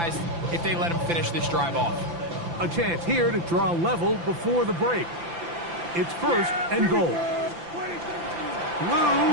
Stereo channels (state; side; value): late; left; 5.9 ms